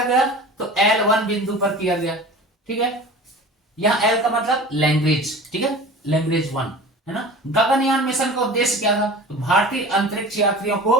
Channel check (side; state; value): both; normal; correlation 0.38